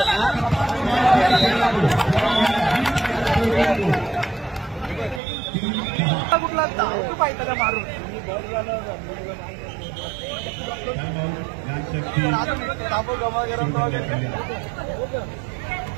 कुठला पाहिजे का मारून गमा गरम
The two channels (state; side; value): drops out; left; at 5.2 s